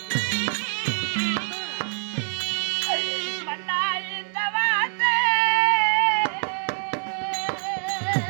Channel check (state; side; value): silent; left; digital silence